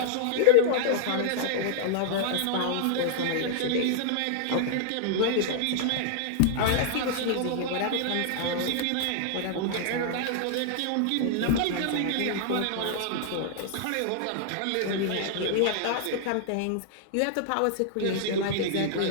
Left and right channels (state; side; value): different; both; correlation -0.01